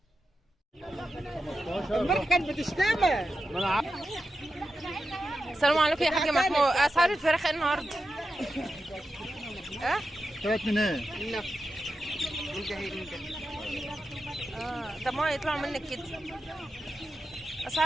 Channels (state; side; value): normal; both; correlation 0.90